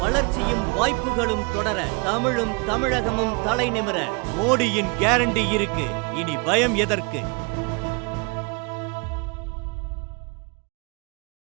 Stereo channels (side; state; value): left; quieter; 31.4 dB